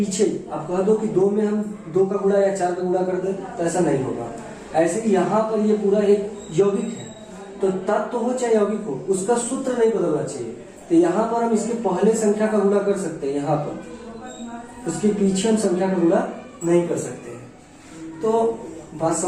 आप कह दो कि 2 में हम 2 का गुणा या 4 का गुणा कर दे तो ऐसा नहीं होगा। ऐसे ही यहाँ पर ये पूरा एक यौगिक है, तो तत्व हो चाहे यौगिक हो, उसका सूत्र नहीं बदलना चाहिए। तो यहाँ पर हम इसके पहले संख्या का गुणा कर सकते हैं, यहाँ पर उसके पीछे हम संख्या का गुणा नहीं कर सकते हैं। तो बात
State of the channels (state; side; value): identical; both; correlation 1.00